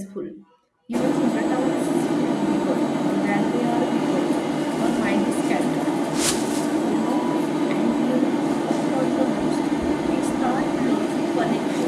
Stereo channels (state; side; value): identical; both; correlation 1.00